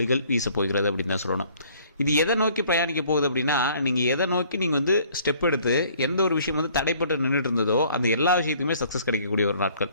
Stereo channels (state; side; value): inverted; both; correlation -0.58